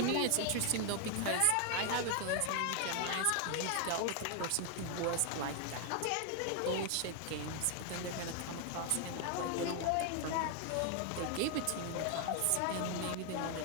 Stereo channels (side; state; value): both; different; correlation 0.00